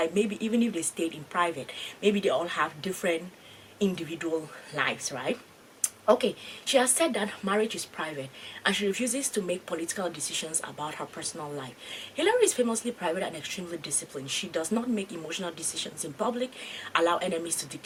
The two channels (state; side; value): identical; both; correlation 1.00